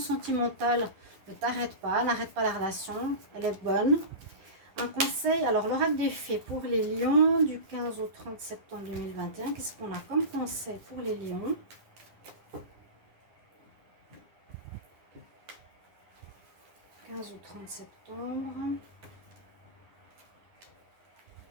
Ne t'arrête pas. N'arrête pas la relation. Elle est bonne. Un conseil, alors l'oracle des fées pour les lions du 15 au 30 septembre 2021. Qu'est-ce qu'on a comme conseil pour les lions? « 15 au 30 septembre.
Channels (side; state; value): left; late; 10 ms